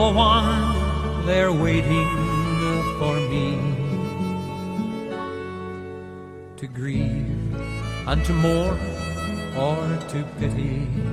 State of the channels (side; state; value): both; identical; correlation 1.00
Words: one there waiting for me to grieve and to mourn or to pity.